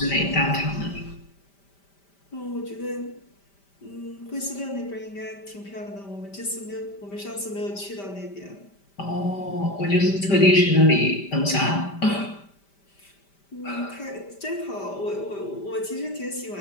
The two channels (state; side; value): late; right; 5.1 ms